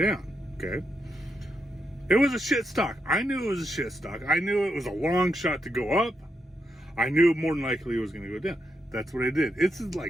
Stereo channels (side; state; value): both; normal; correlation 0.83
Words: Okay, it was a shit stock. I knew it was a shit stock. I knew it was a long shot to go up. I knew more than likely it was going to go down. That's what I did. It's